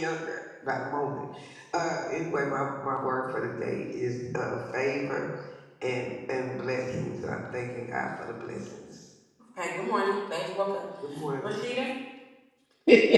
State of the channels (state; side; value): identical; both; correlation 1.00